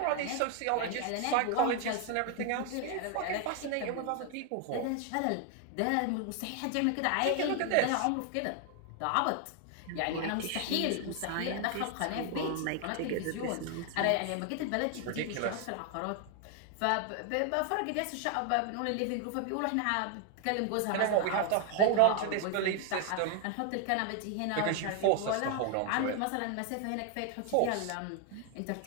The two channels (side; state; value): both; different; correlation 0.00